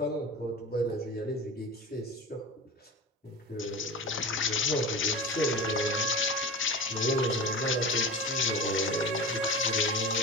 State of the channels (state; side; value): normal; both; correlation 0.30